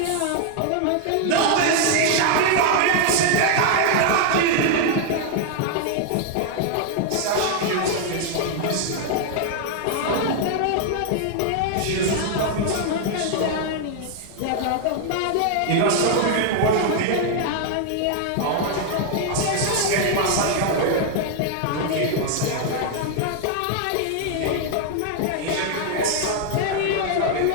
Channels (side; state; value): both; different; correlation 0.00